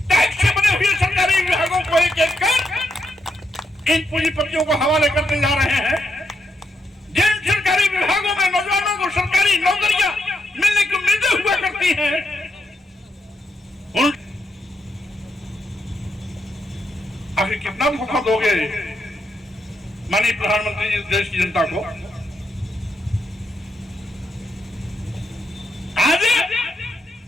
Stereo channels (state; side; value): normal; both; correlation 0.81